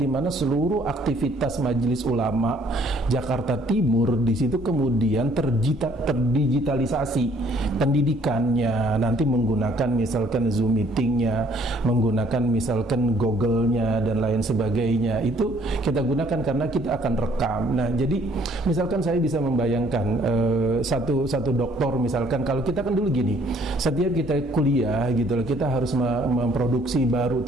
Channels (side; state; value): both; normal; correlation 0.61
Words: mana seluruh aktivitas Majelis Ulama Jakarta Timur di situ kemudian terdigitalisasi. Pendidikannya nanti menggunakan misalkan Zoom meetingnya, menggunakan misalkan Google-nya dan lain sebagainya, itu kita gunakan karena kita akan rekam. Nah, jadi misalkan saya bisa membayangkan satu dokter misalkan, kalau kita kan dulu gini, setiap kita kuliah gitu loh, kita harus memproduksi baru